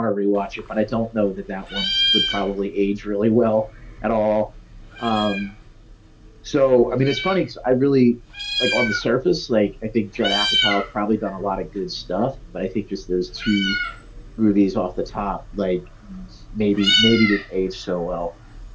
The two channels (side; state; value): both; identical; correlation 1.00